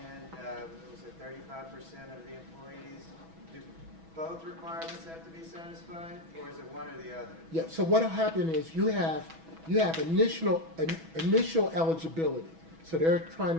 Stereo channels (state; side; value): late; left; 6.1 ms